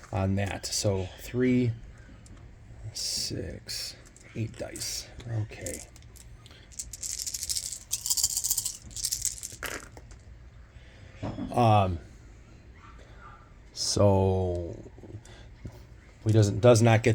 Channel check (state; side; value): identical; both; correlation 1.00